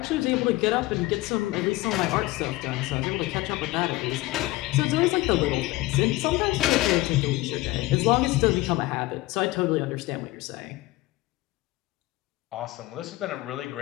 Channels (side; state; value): right; quieter; 19.1 dB